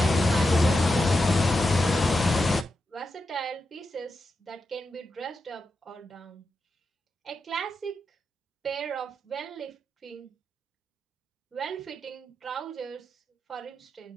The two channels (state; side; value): normal; both; correlation 0.88